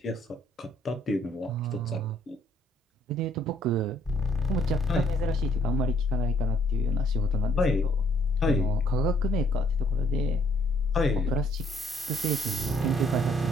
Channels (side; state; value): both; normal; correlation 0.66